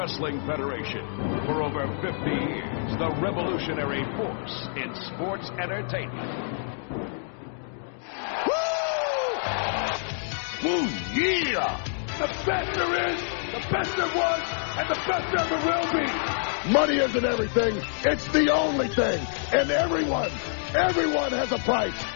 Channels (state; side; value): silent; right; digital silence